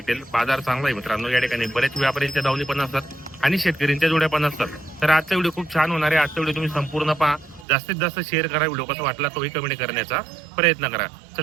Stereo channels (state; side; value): drops out; left; at 7.7 s